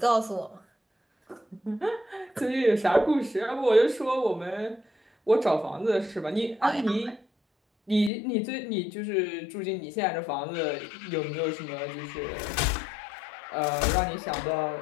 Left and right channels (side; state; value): right; drops out; at 8.1 s